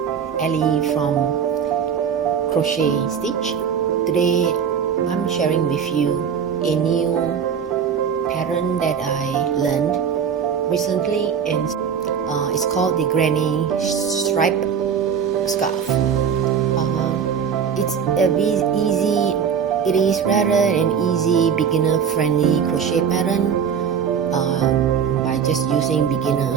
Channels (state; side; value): quieter; left; 7.3 dB